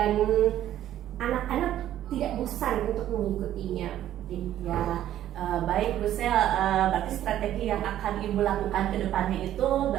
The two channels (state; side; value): quieter; left; 12.2 dB